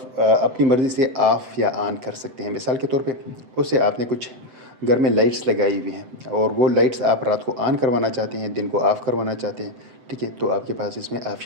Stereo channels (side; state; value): left; late; 7.8 ms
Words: अपनी मर्ज़ी से ऑफ़ या ऑन कर सकते हैं। मिसाल के तौर पे उससे आपने कुछ घर में लाइट्स लगाई हुई हैं, और वो लाइट्स आप रात को ऑन करवाना चाहते हैं, दिन को ऑफ़ करवाना चाहते हैं। ठीक है, तो आपके पास इसमें